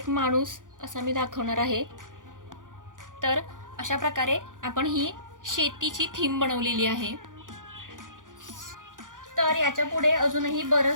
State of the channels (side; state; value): left; late; 0.88 ms